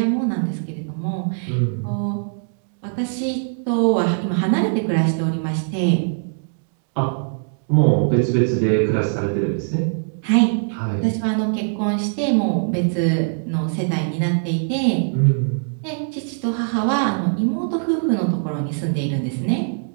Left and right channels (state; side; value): silent; left; digital silence